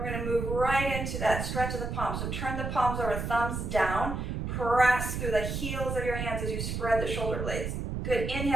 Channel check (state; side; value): noise; right; rumble, 3 dB below the sound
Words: we're going to move right into that stretch of the palms. So turn the palms over, thumbs down. Press through the heels of your hands as you spread the shoulder blades. Good.